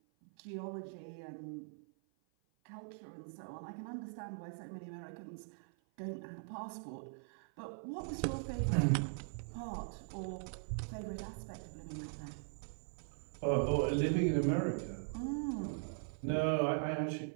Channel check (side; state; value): left; silent; 51 dB below the other